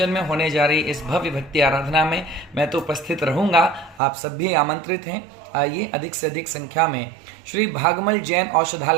में होने जा रही इस भव्य भक्ति आराधना में मैं तो उपस्थित रहूंगा, आप सब भी आमंत्रित हैं। आइए अधिक से अधिक संख्या में श्री भागमल जैन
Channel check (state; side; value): drops out; left; at 4.0 s